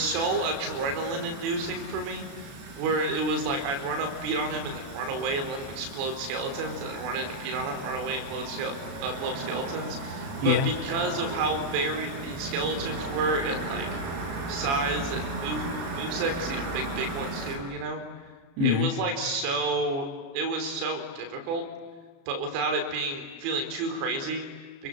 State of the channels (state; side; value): late; left; 36 ms